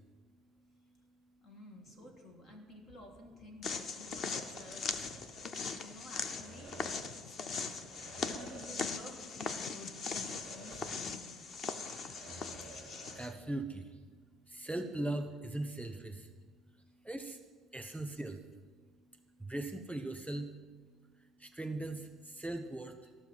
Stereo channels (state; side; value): normal; both; correlation 0.72